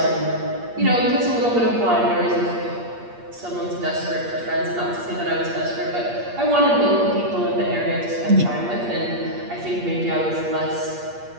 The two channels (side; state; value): left; late; 8.5 ms